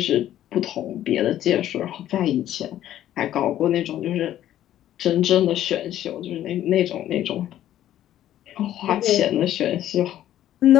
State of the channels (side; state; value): right; quieter; 12.3 dB